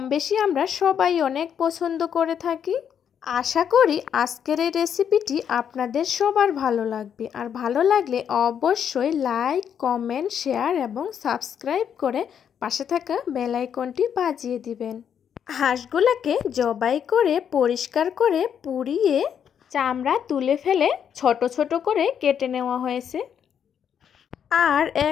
বেশি আমরা সবাই অনেক পছন্দ করে থাকি। আশা করি আজকের এই রেসিপিটি আপনাদের সবার ভালো লাগবে। আর ভালো লাগলে অবশ্যই লাইক, কমেন্ট, শেয়ার এবং সাবস্ক্রাইব করে পাশে থাকা বেল আইকনটি বাজিয়ে দিবেন। হাঁসগুলোকে জবাই করে পরিষ্কার করে পুড়িয়ে চামড়া তুলে ফেলে ছোট ছোট করে কেটে নেওয়া হয়েছে। আর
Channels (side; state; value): right; quieter; 8.3 dB